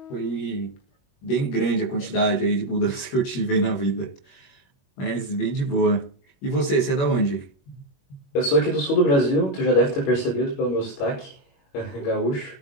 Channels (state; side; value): late; right; 21 ms